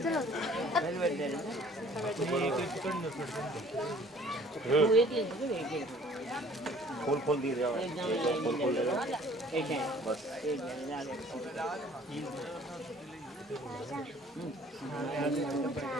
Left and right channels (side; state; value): both; normal; correlation 0.53